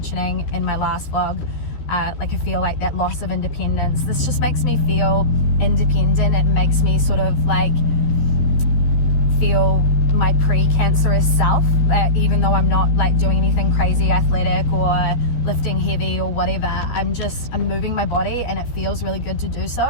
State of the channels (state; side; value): late; right; 13 ms